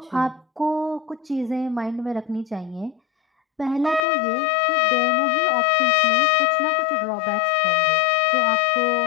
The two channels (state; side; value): drops out; right; at 4.0 s